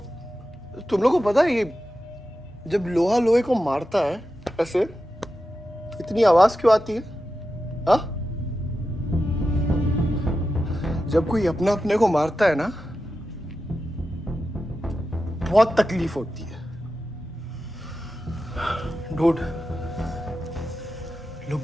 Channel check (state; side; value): normal; both; correlation 0.91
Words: तुम लोगों को पता है ये जब लोहा लोहे को मारता है ऐसे इतनी आवाज क्यों आती है? हाँ? जब कोई अपना अपने को मारता है ना, बहुत तकलीफ होती है। Dude, look